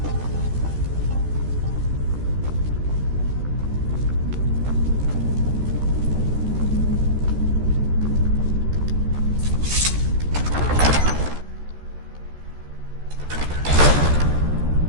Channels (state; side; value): late; left; 14 ms